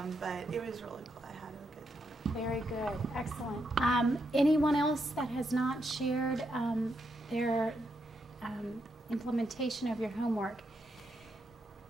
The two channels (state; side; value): normal; both; correlation 0.81